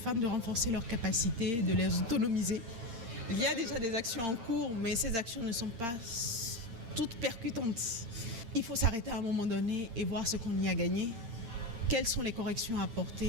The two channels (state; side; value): late; left; 8.7 ms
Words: de renforcer leurs capacités, de les autonomiser. Il y a déjà des actions en cours, mais ces actions ne sont pas toutes percutantes. Il faut s'arrêter à un moment donné et voir ce qu'on y a gagné, quelles sont les corrections à